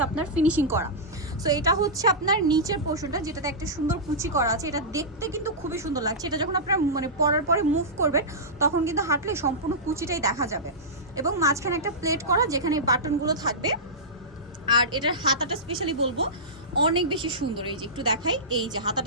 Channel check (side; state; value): both; normal; correlation -0.15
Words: আপনার ফিনিশিং করা। সো এটা হচ্ছে আপনার নিচের পোর্শনটা, যেটাতে একটা সুন্দর কুচি করা আছে। এটা দেখতে কিন্তু খুবই সুন্দর লাগছে। এটা যখন আপনার মানে পরার পরে মুভ করবেন তখন কিন্তু হাঁটলে সম্পূর্ণ কুচিটাই দেখা যাবে, এবং মাঝখানে একটা প্লেট করা যেখানে বাটনগুলো থাকবে। আর এটার হাতাটা স্পেশালি বলবো অনেক বেশি সুন্দর। এই যে একটু দেখাই, এই যে